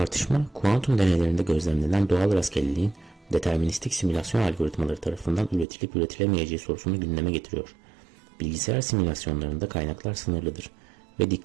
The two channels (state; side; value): drops out; left; at 5.7 s